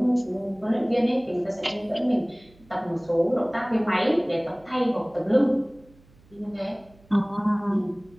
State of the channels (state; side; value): noise; right; hum, 28 dB below the sound